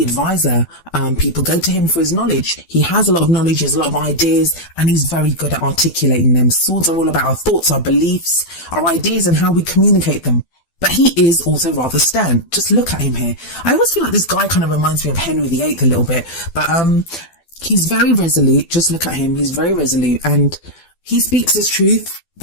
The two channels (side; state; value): right; late; 12 ms